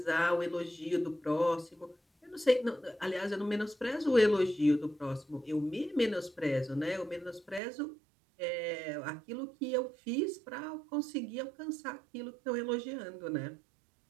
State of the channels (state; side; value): drops out; left; at 7.6 s